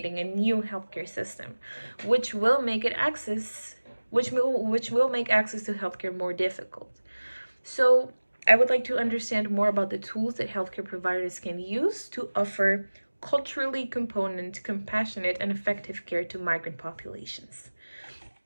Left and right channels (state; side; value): inverted; both; correlation -1.00